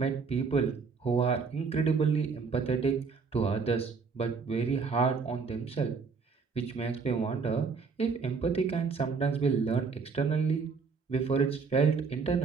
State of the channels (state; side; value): quieter; left; 5.1 dB